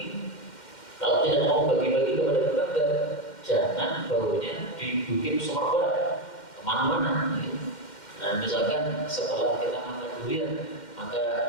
Kalau tidak mau bagi-bagi kepada tetangga, jangan baunya dibikin semerbak kemana-mana. Nah, misalkan setelah kita makan durian, maka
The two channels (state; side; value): late; right; 2.1 ms